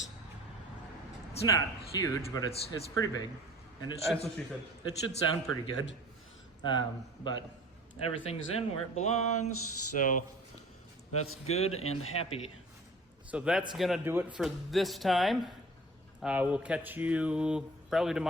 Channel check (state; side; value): normal; both; correlation 0.45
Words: not huge, but it's pretty big. And it should, That's what she said. it should sound pretty good. But everything's in where it belongs, so that's good and happy. So that's gonna do it for this time. We'll catch you probably